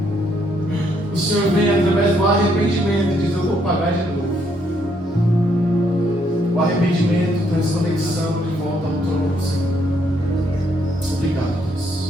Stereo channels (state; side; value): normal; both; correlation 0.72